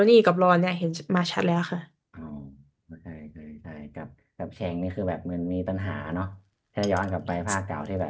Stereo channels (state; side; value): identical; both; correlation 1.00